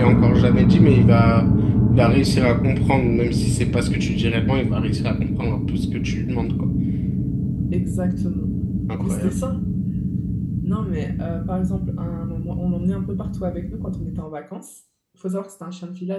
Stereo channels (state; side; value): identical; both; correlation 1.00